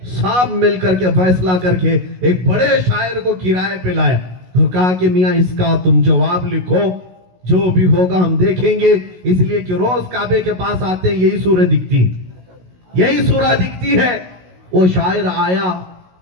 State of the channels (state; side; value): late; left; 16 ms